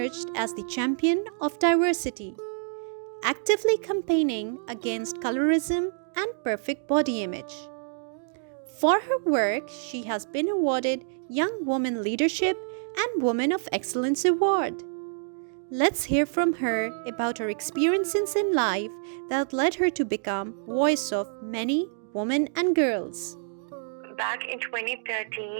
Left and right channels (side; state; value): left; silent; digital silence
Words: as the champion of diversity, actively campaigning against colorism and perfect body image. For her work, she has been awarded Young Woman Leadership and Woman of Excellence Award. Let's hear from her about her experiences in life that led her to become voice of many women and girls. Back in